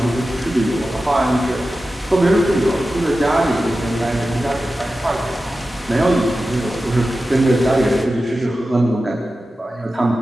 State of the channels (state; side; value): normal; both; correlation 0.93